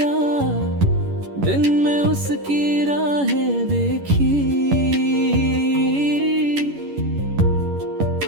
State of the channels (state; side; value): late; left; 11 ms